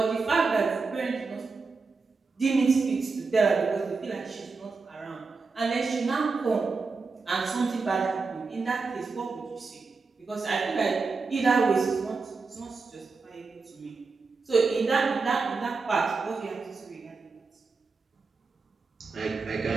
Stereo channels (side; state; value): left; quieter; 4.4 dB